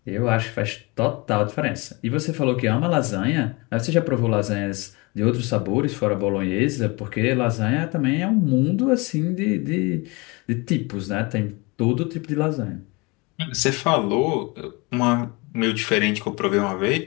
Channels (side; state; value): right; quieter; 26.4 dB